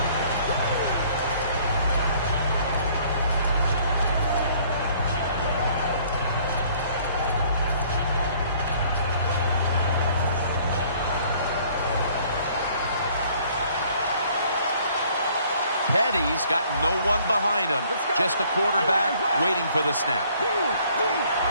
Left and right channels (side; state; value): both; inverted; correlation -0.59